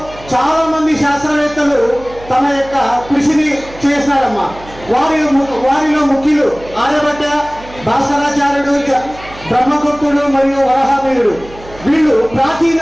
చాలా మంది శాస్త్రవేత్తలు తమ యొక్క కృషిని చేసినారమ్మా. వారిలో ముఖ్యులు ఆర్యభట్ట, భాస్కరాచార్యుడు, బ్రహ్మగుప్తుడు మరియు వరాహమిహిరుడు. వీళ్ళు ప్రాచీన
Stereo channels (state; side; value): noise; right; hum, 18 dB below the sound